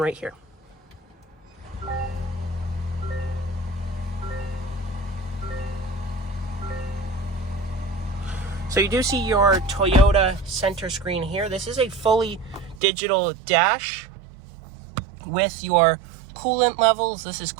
here. So you do see your Toyota center screen here. This is a fully digital dash with your coolant levels. This is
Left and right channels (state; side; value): drops out; left; at 12.8 s